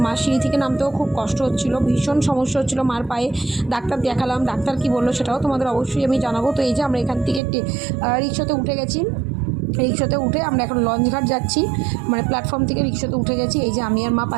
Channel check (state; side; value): drops out; left; at 7.4 s